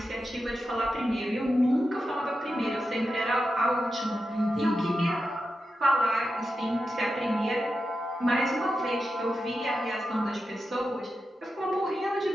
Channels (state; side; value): normal; both; correlation 0.89